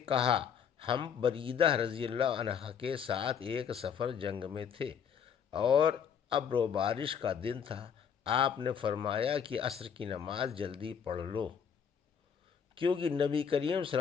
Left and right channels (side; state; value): right; quieter; 7.5 dB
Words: کہا ہم بریدہ رضی اللہ عنہ کے ساتھ ایک سفر جنگ میں تھے اور ابر و بارش کا دن تھا، آپ نے فرمایا کہ عصر کی نماز جلدی پڑھ لو، کیونکہ نبی کریم صلی